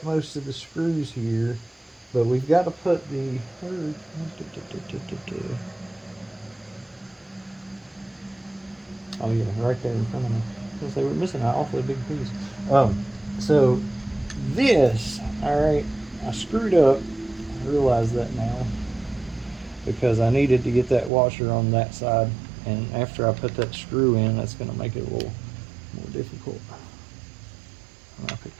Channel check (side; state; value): left; drops out; at 21.1 s